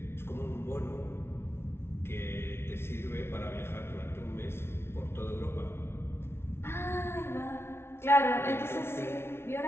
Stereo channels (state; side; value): late; right; 0.12 ms